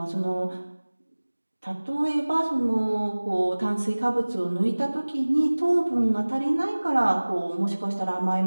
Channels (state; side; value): inverted; both; correlation -1.00